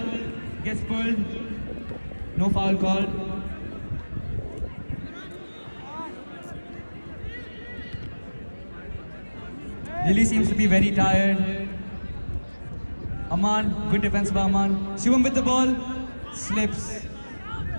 Gets pulled. No foul called. Lily seems to be very tired. Amman, good defense by Amman. Shivam with the ball. Slips.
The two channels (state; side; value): inverted; both; correlation -1.00